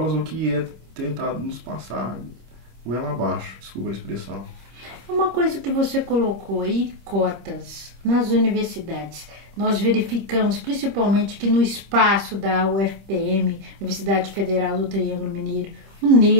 ou que é tentado nos passar goela abaixo, desculpa a expressão. Uma coisa que você colocou aí, cotas nas universidades. Nós verificamos principalmente que no espaço da UFPM, Universidade Federal do Triângulo Mineiro, o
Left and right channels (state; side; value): late; left; 25 ms